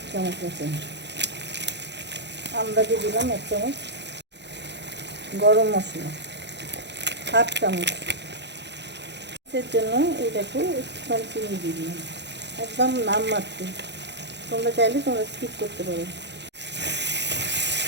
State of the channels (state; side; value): late; left; 0.50 ms